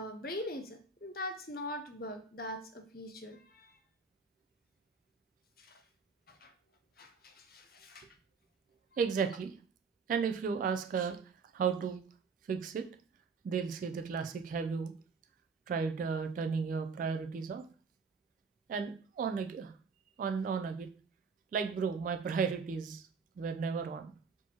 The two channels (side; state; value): left; quieter; 5.0 dB